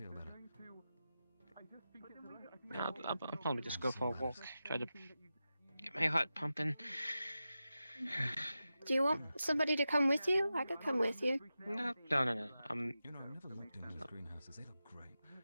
better. I'll probably just go for a walk. Try to get my heart pumping. Do you want somebody to come with you? I could come with you. No. You know, I've never looked into those greenhouses. They look great.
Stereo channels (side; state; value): both; inverted; correlation -0.92